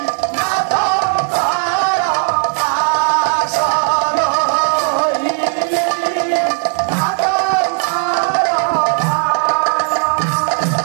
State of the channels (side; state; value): left; silent; 55 dB below the other